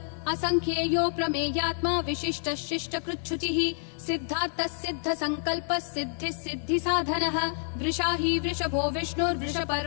असंख्येयो प्रमेयात्मा विशिष्ट शिष्ट कृच्छुचिः सिद्धार्थः सिद्ध संकल्पः सिद्धिः सिद्धि साधनः वृषाही वृषभो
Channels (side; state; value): right; silent; 59 dB below the other